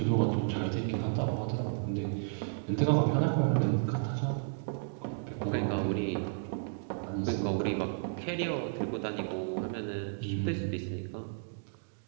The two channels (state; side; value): silent; left; digital silence